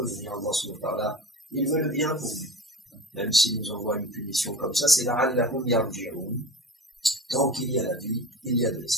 dans ce moment-là. Il veut le bien pour nous. Même s'il nous envoie une punition comme ça, c'est la'allahum yarji'un. Tant qu'il y a la vie, il y a de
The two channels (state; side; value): normal; both; correlation 0.35